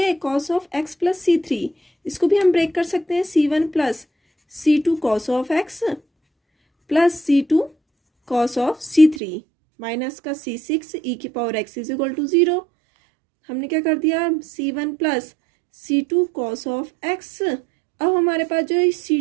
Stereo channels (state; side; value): drops out; left; at 9.2 s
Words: है, cos of x plus C3। इसको भी हम ब्रेक कर सकते हैं, C1 plus C2 cos of x plus C2 cos of C3 minus का C6 ई की power x is equal to 0। हमने क्या कर दिया, C1 plus C2 cos of x। अब हमारे पास जो